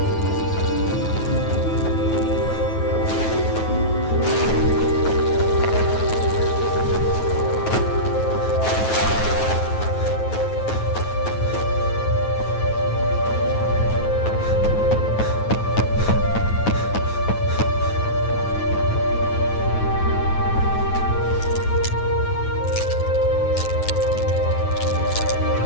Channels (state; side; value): late; right; 9.3 ms